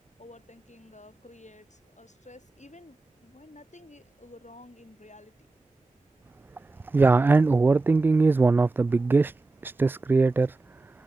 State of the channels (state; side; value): quieter; left; 3.4 dB